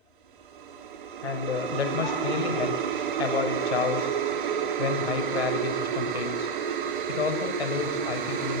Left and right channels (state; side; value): normal; both; correlation 0.08